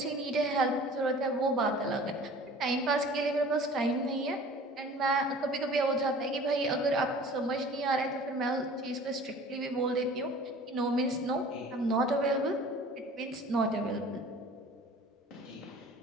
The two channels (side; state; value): both; normal; correlation 0.45